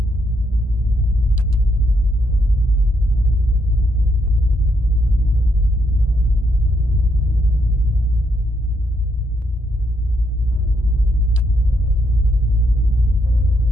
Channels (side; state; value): both; normal; correlation 0.76